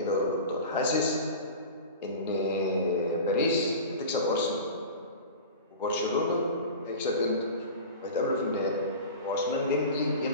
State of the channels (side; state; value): both; inverted; correlation -0.33